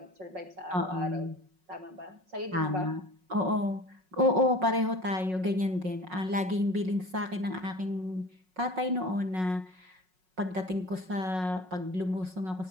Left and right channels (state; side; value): late; left; 5.4 ms